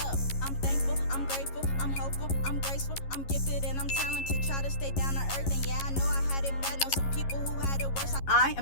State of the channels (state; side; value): late; right; 11 ms